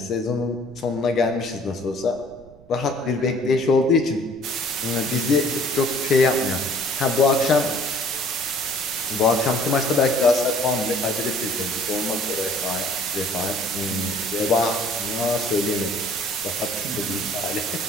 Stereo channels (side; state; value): right; noise; rumble, 24 dB below the sound